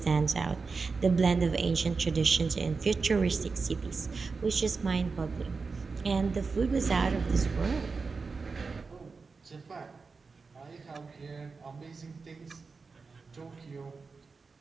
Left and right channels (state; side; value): quieter; left; 4.6 dB